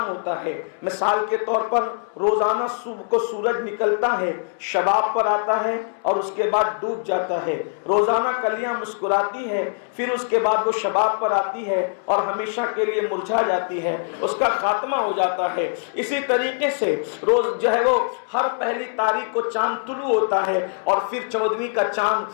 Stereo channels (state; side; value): silent; right; digital silence